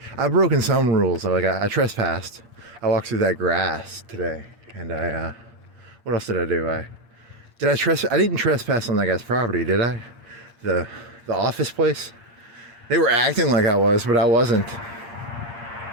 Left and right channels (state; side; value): late; left; 8.6 ms